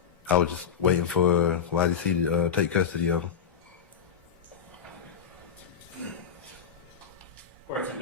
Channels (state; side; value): quieter; right; 7.5 dB